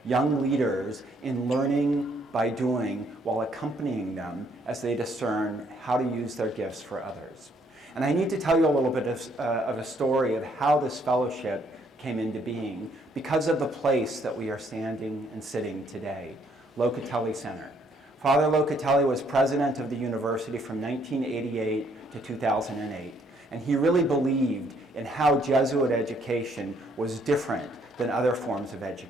young leaders, in learning by doing while accompanying them as they discern how to use their gifts for others. And I need to tell you a little bit of a story of how this fellowship came into being because of the place that we are standing and sitting today, Locatelli Center. Father Locatelli was president of the university from 1988 to 2008, and he really believed in how Jesuit education was different than other forms of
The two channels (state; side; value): normal; both; correlation 0.67